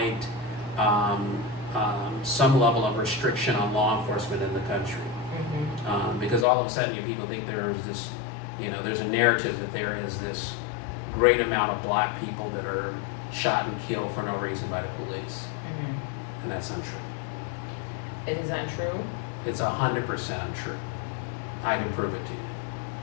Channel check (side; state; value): right; drops out; at 6.5 s